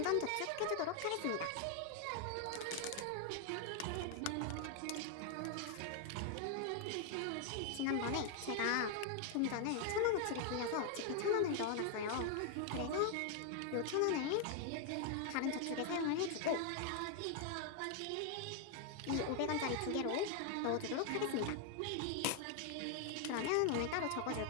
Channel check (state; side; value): different; both; correlation 0.00